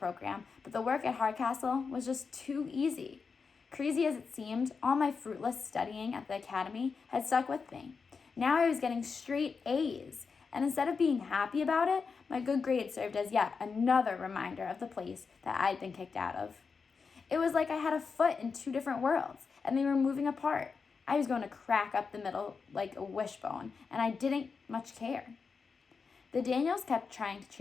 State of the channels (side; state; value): right; quieter; 5.2 dB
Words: but the work at Hardcastle was just too easy. Crazy as it seemed, all my fruitless studying at the academy had stuck with me. Now I was getting straight A's, and instead of being happy about it, my good grades served as yet another reminder of the place that I'd been kicked out of. It was like I had a foot in two different worlds, and they were moving apart. I was going to crack up the middle like a wishbone, and I didn't much care. The Daniels kept trying to